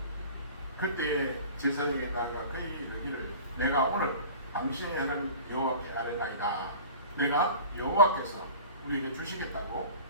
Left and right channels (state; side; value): inverted; both; correlation -0.41